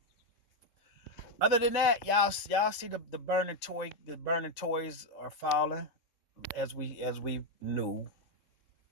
Other than that, y'all see the burning toys are falling as we knew.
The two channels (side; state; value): right; late; 3.7 ms